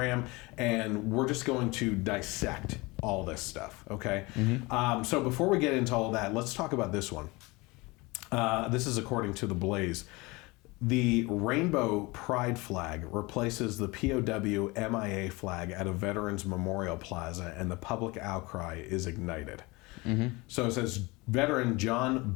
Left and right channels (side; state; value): right; quieter; 24.0 dB